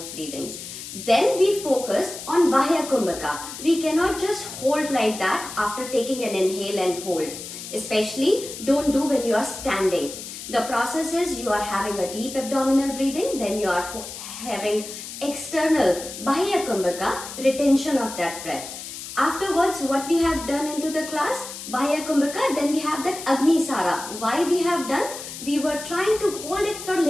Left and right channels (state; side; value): noise; left; hiss, 10 dB below the sound